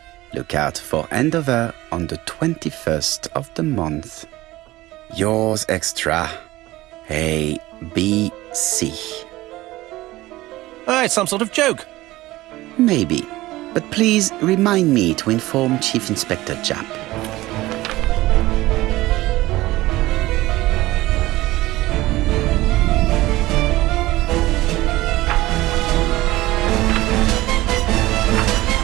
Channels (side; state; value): left; quieter; 18.0 dB